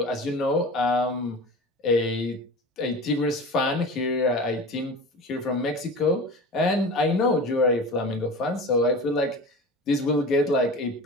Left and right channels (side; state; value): both; normal; correlation 0.33